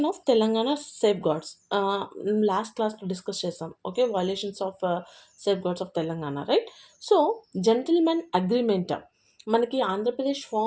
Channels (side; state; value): both; identical; correlation 1.00